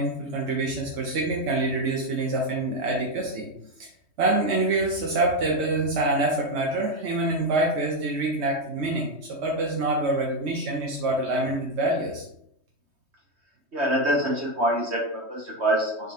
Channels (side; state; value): left; late; 3.2 ms